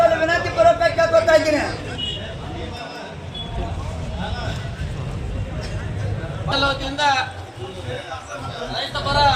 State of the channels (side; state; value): both; identical; correlation 1.00